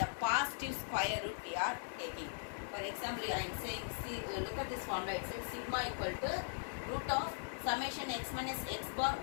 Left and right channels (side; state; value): right; silent; digital silence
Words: positive square root we are taking. For example, I am saying, see, look at this formula. It says sigma equal to root of summation x minus x bar